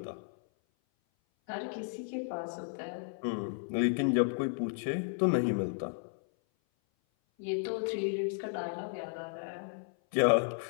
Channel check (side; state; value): right; silent; 55 dB below the other